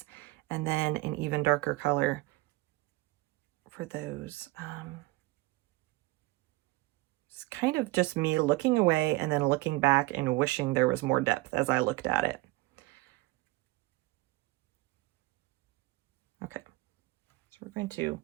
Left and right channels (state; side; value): quieter; left; 20.7 dB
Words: and then an even darker color for those. It's kind of just me looking away and then looking back and wishing there was more depth as I looked at it. Okay, so we're going to